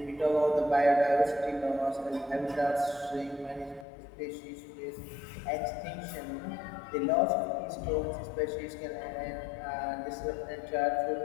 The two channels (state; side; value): drops out; right; at 3.9 s